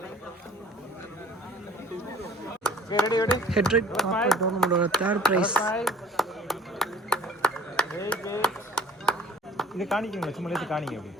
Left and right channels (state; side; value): normal; both; correlation 0.50